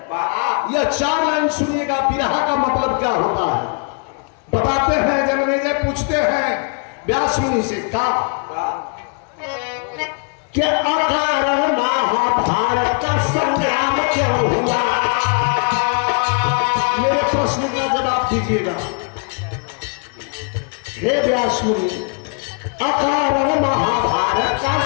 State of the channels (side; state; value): right; quieter; 39.4 dB